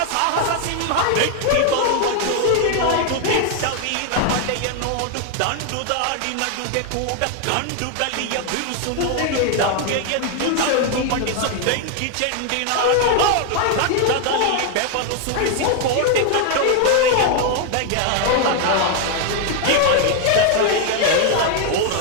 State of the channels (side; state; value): both; different; correlation 0.01